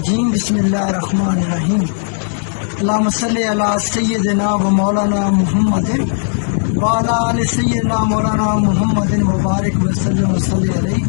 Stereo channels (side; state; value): right; silent; digital silence